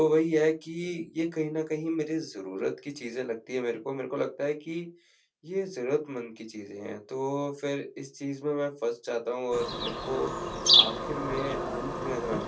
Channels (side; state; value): both; identical; correlation 1.00